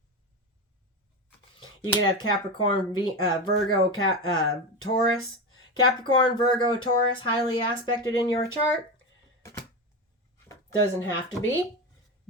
You can have Capricorn, Virgo, Taurus. Capricorn, Virgo, Taurus, highly aspected in your chart. Doesn't have to be,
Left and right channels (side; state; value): both; normal; correlation 0.19